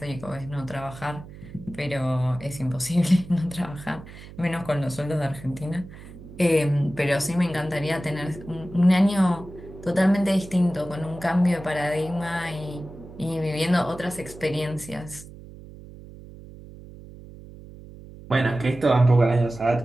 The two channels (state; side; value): noise; right; hum, 17 dB below the sound